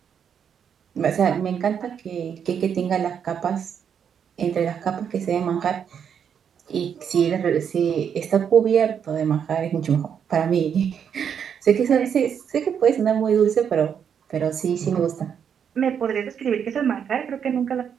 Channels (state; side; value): quieter; left; 7.8 dB